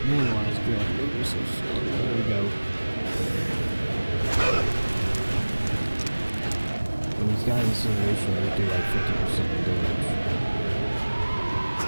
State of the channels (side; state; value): both; inverted; correlation -1.00